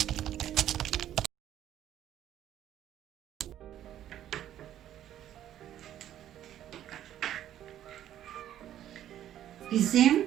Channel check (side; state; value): left; quieter; 11.6 dB